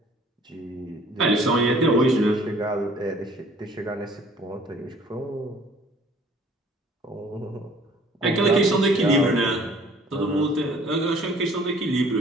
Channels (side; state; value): both; normal; correlation 0.54